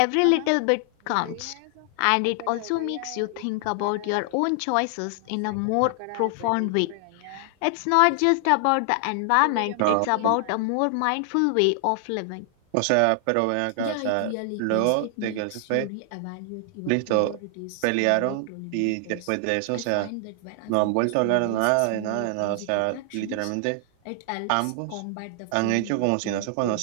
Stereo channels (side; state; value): both; different; correlation 0.00